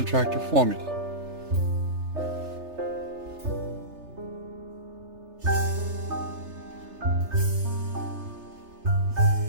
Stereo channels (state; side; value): late; left; 3.3 ms